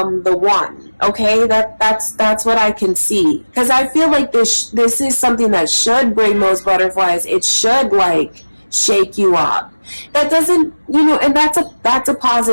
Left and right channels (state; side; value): inverted; both; correlation -1.00